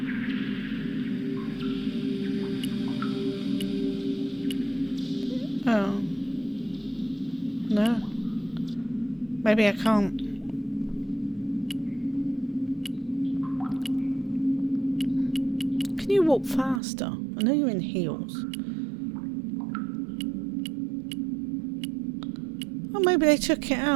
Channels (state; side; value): drops out; left; at 16.8 s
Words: Oh. No. Maybe I can't. Can you walk faster? I know you're in heels. Oh, maybe they took it